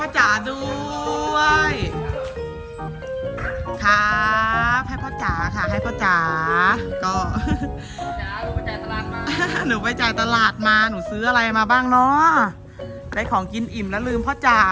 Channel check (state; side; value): identical; both; correlation 1.00